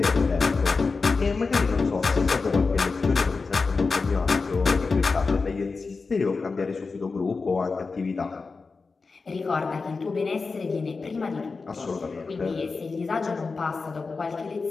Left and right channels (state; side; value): quieter; right; 4.3 dB